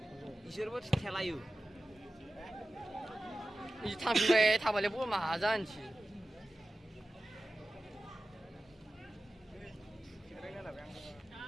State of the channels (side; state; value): both; normal; correlation 0.94